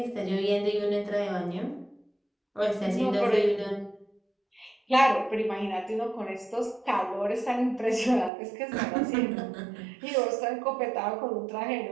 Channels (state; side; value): drops out; left; at 8.3 s